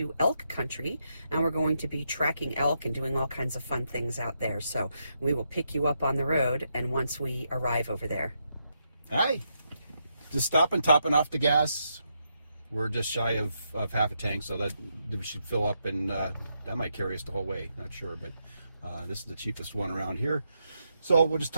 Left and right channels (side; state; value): both; inverted; correlation -0.81